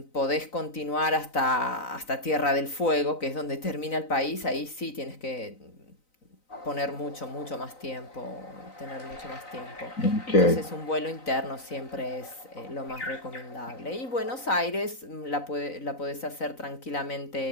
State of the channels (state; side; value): late; right; 3.9 ms